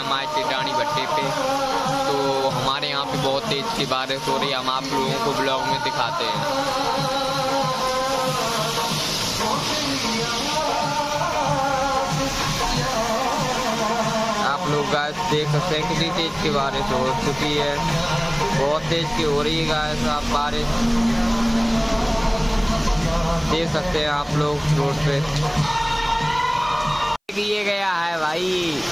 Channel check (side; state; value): both; identical; correlation 1.00